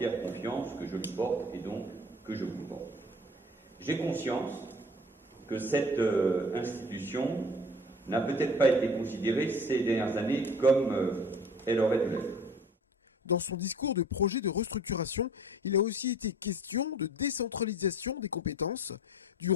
confiance que je lui porte et donc que je vous porte. J'ai conscience que cette institution n'a peut-être pas été considérée ces dernières années comme elle aurait dû l'être. Dans son discours de projet de restructuration, il a aussi été question de décentralisation des compétences, du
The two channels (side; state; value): both; normal; correlation 0.46